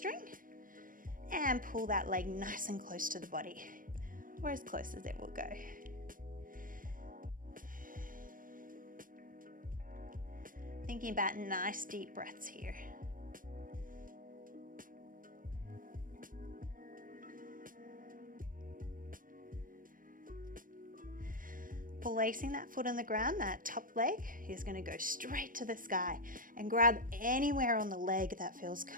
and pull that leg nice and close to the body, or as close as it will go. Thinking about nice deep breaths here. Placing that foot on the ground, that top leg is going to go straight to the sky, and grab anywhere on the leg that feels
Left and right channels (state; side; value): late; left; 0.40 ms